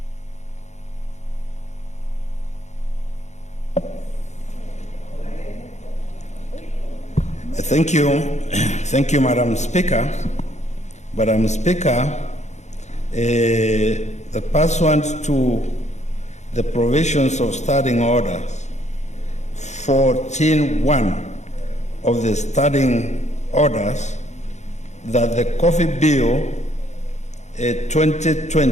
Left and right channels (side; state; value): right; late; 0.33 ms